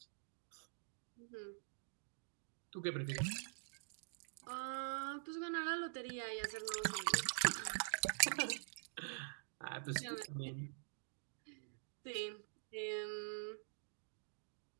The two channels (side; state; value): left; silent; digital silence